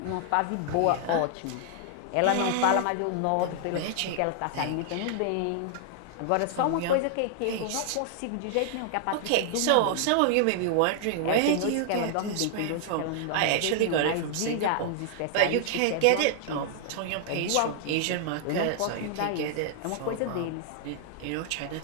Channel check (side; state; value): both; different; correlation -0.01